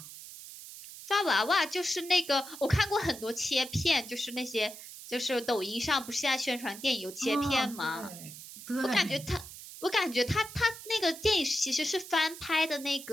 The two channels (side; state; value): right; noise; hiss, 14 dB below the sound